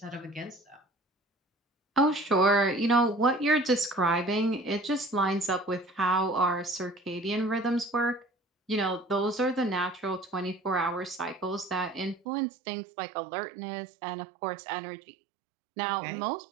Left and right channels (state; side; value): drops out; left; at 12.2 s